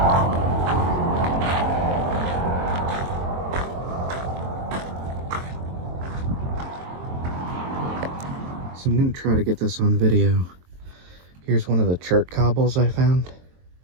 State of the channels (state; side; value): late; left; 23 ms